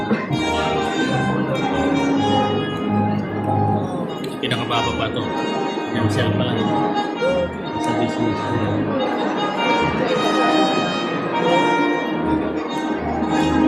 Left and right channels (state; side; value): identical; both; correlation 1.00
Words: Cancel pa lang. Sa business.